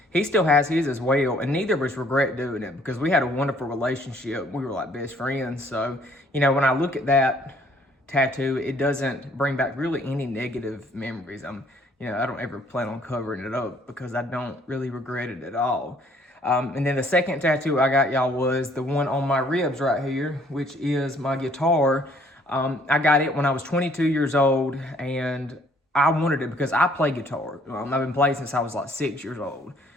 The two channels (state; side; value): normal; both; correlation 0.61